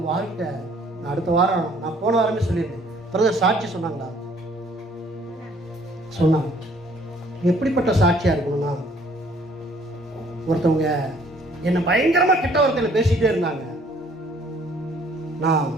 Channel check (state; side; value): normal; both; correlation 0.60